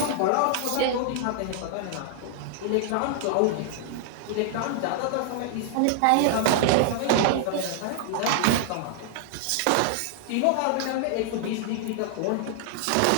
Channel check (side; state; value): both; different; correlation 0.00